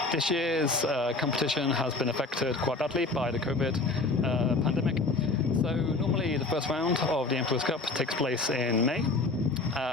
This year's competition has been affected quite badly by the COVID pandemic. So normally the first round of the Emperor's Cup takes place in May.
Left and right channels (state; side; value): quieter; right; 3.4 dB